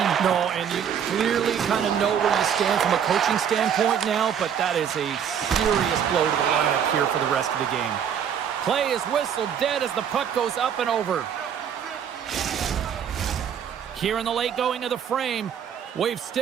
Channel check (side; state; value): left; quieter; 8.3 dB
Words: No, and you clearly kind of know where you stand from a coaching standpoint now, but that is a serious blow to the lineup here for the rest of the game. Play is whistled dead as the puck goes up and over. Here in the late going of the frame, we've